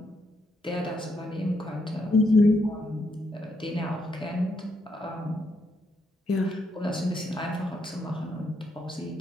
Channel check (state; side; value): normal; both; correlation 0.77